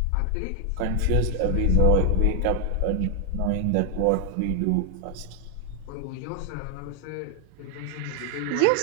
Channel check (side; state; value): both; different; correlation 0.00